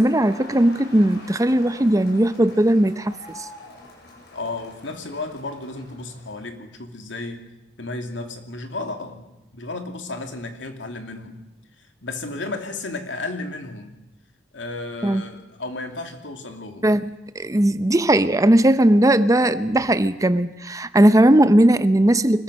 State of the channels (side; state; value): both; normal; correlation 0.83